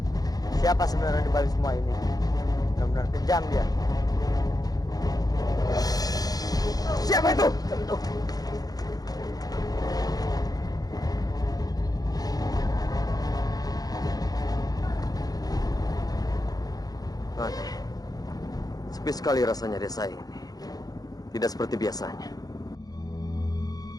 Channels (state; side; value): late; right; 0.18 ms